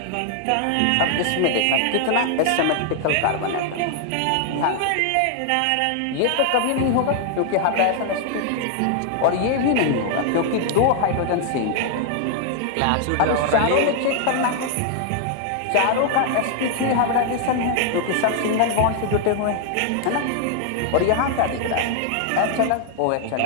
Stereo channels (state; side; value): different; both; correlation 0.00